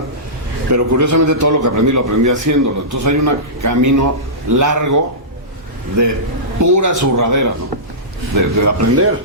pero curiosamente todo lo que aprendí lo aprendí haciéndolo. Entonces hay un camino largo de pura zurradera, ¿no? De aprender,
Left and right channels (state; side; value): normal; both; correlation -0.18